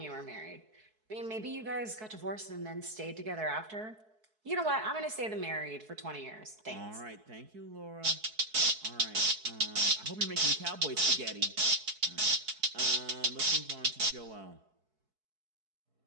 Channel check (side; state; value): left; late; 4.6 ms